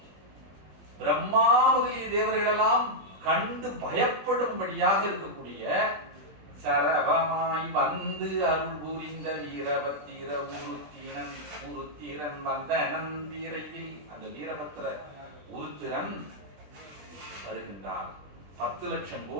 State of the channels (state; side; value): late; left; 20 ms